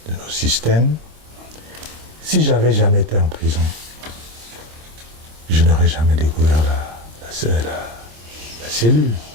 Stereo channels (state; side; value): late; left; 26 ms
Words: de nos systèmes. Si j'avais jamais été en prison, je n'aurais jamais découvert la cellule.